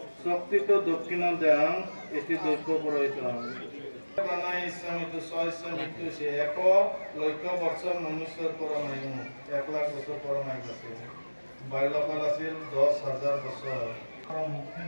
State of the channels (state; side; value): inverted; both; correlation -1.00